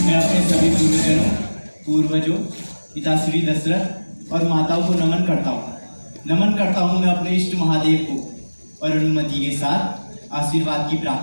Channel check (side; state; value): both; inverted; correlation -1.00